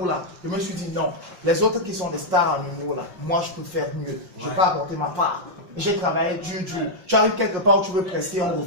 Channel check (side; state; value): left; late; 5.6 ms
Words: je me suis dit non, les autres qui sont des stars en humour là, moi je peux faire mieux, je peux apporter ma part. J'ai travaillé dur. Tu arrives quelque part où tu veux prester, on